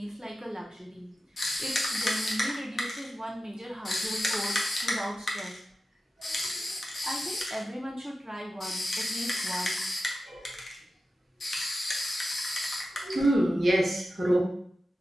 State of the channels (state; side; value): normal; both; correlation 0.92